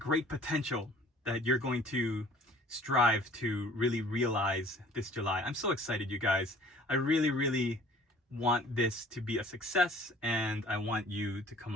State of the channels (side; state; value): both; normal; correlation 0.51